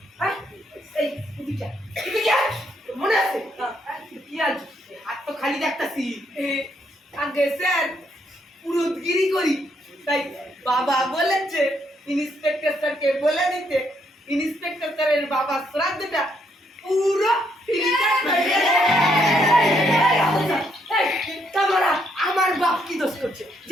হ্যাঁ এই এদিকে এদিকে মনে আছে কি আজ হাত তো খালি দেখতাছি আগে স্যার পুরোদগিরি করি তাই বাবা বলেছে ইন্সপেক্টর স্যারকে বলে দিতে ইন্সপেক্টর স্যারের বাবা শ্রাদ্ধটা পুরো তোমরা আমার বাপ কি দোষ করছে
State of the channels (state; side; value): normal; both; correlation 0.74